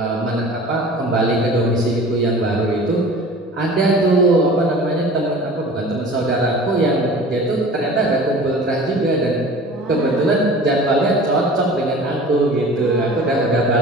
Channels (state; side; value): normal; both; correlation 0.41